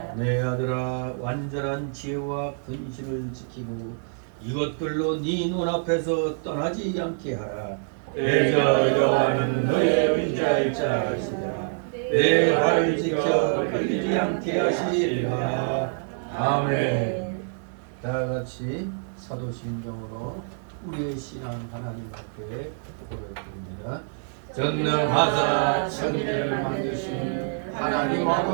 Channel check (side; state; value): left; silent; digital silence